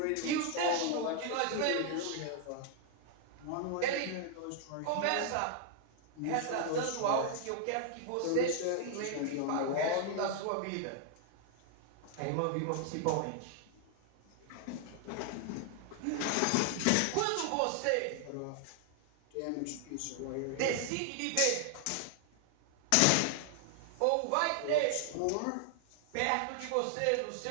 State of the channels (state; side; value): different; both; correlation 0.00